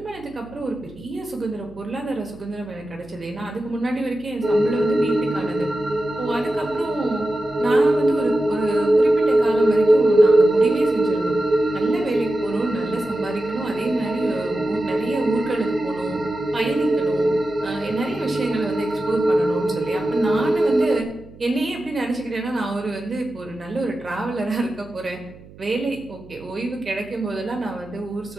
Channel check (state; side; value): noise; right; hum, 21 dB below the sound